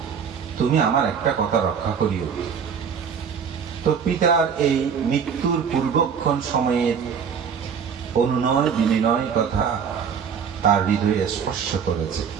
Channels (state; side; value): quieter; left; 6.9 dB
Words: তুমি আমার একটা কথা রক্ষা করিও। তো পিতার এই মৃত্যুর পূর্বক্ষণ সময়ের অনুনয় বিনিময় কথা তার হৃদয়ে স্পর্শ করেছে।